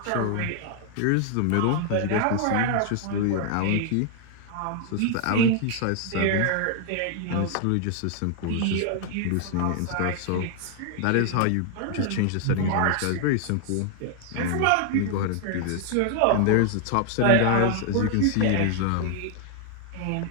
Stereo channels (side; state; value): both; different; correlation 0.00